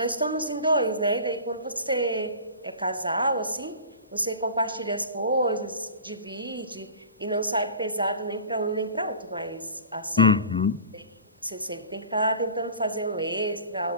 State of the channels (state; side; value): inverted; both; correlation -0.38